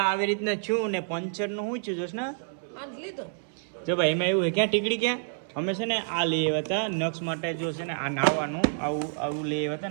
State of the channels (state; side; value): silent; left; 59 dB below the other